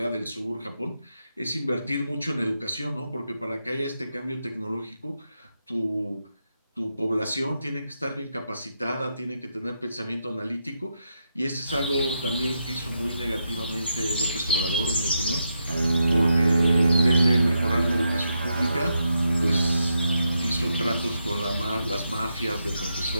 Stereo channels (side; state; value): both; inverted; correlation -0.83